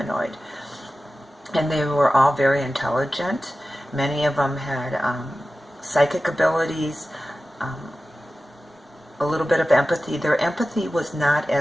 And they were all very intelligent. Many of them had psychic abilities, a little bit of empathy. Their empathy was not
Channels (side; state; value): both; normal; correlation 0.95